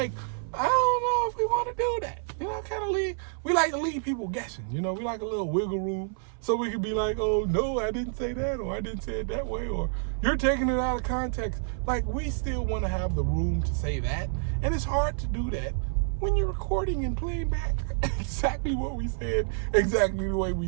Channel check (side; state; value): left; silent; 59 dB below the other